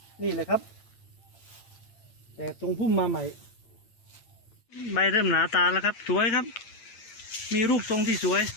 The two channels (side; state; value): right; late; 8.9 ms